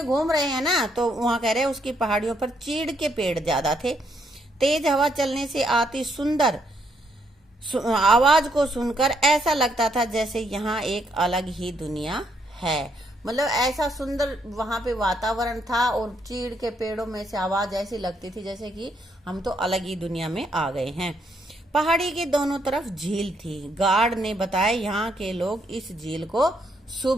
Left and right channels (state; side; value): normal; both; correlation 0.73